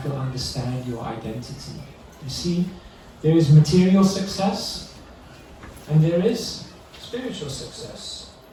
to understand your identity. You see, there is material success, and there is spiritual success.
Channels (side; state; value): both; identical; correlation 1.00